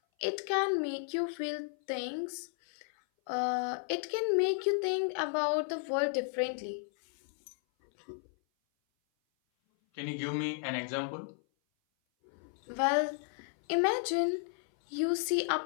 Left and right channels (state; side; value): silent; right; 55 dB below the other